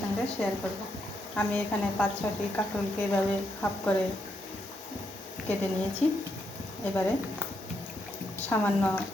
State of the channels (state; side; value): normal; both; correlation 0.79